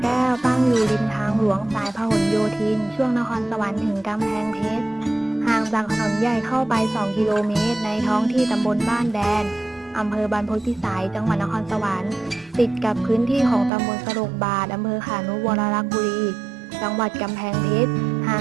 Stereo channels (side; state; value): left; drops out; at 13.7 s